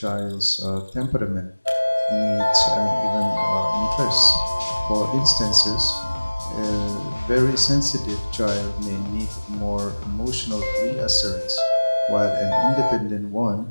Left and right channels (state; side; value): inverted; both; correlation -1.00